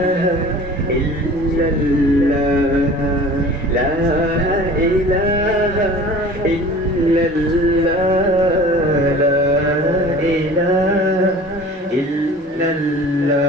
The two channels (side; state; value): both; normal; correlation 0.43